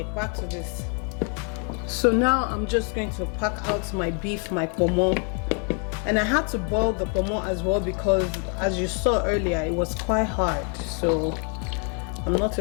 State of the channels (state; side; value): quieter; right; 39.6 dB